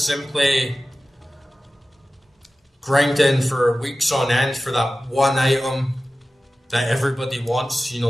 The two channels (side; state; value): both; normal; correlation 0.95